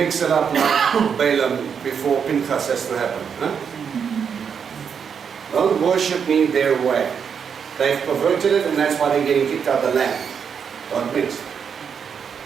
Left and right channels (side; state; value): left; quieter; 7.0 dB